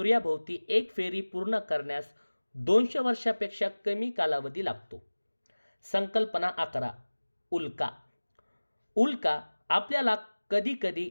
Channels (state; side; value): inverted; both; correlation -1.00